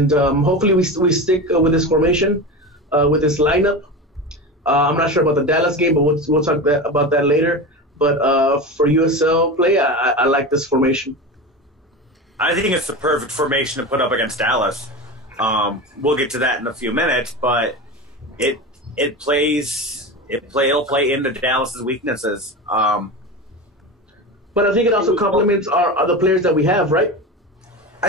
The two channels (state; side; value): normal; both; correlation 0.25